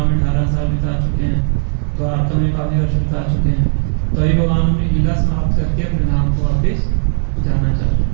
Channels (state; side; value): silent; left; digital silence